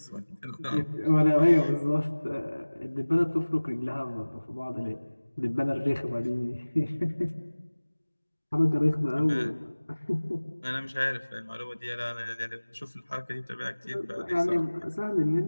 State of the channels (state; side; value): inverted; both; correlation -1.00